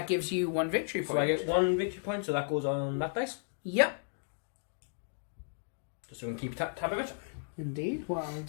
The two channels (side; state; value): right; silent; digital silence